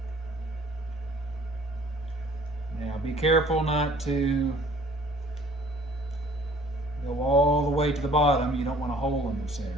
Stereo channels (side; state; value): both; normal; correlation 0.54